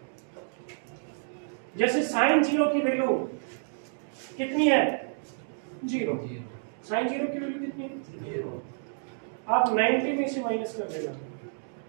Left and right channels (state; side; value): silent; left; digital silence